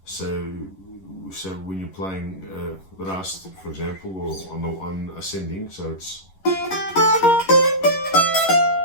so when you're playing Rast, for example, or on ascending, so it's,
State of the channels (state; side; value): late; right; 11 ms